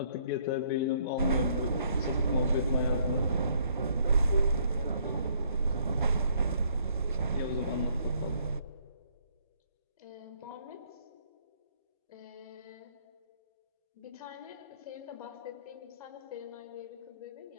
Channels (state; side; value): inverted; both; correlation -0.66